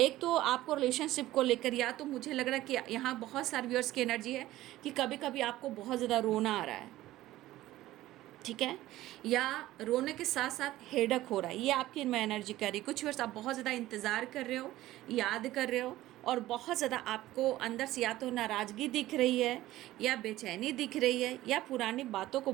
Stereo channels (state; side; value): quieter; left; 15.7 dB